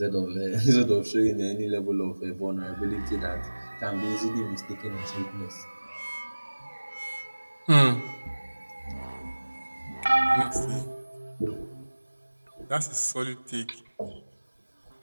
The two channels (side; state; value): both; inverted; correlation -1.00